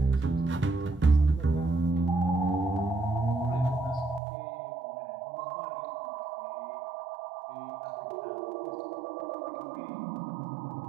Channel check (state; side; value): drops out; left; at 4.2 s